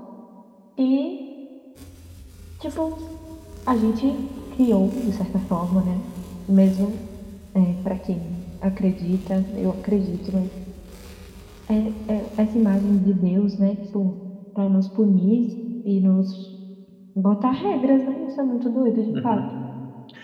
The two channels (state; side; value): identical; both; correlation 1.00